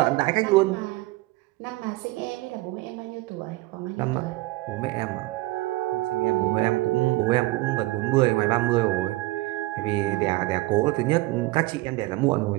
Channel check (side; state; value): left; quieter; 19.9 dB